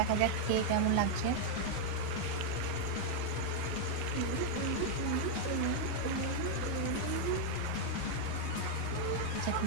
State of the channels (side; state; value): both; different; correlation 0.00